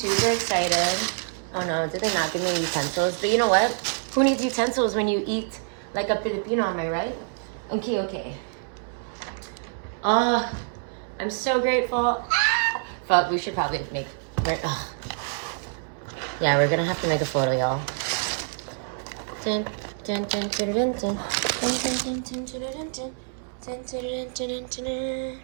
excited. Oh no, did they not give me utensils? But you know what? Who needs utensils when you eat like a Filipino, am I right? Okay. Oh, I'm so grateful. Fuck, we should probably make... Yeah, we're gonna have to make a photo, y'all.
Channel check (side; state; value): left; silent; 61 dB below the other